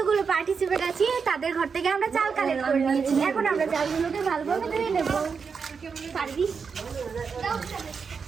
পার্টিসিপেট আছি তাদের ঘর থেকে আমরা চাল কালেক্ট করে নিয়েছি। এখন আমরা চালগুলোকে ভালোভাবে ধুয়ে নেবো। পারবি?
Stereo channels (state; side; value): quieter; left; 5.7 dB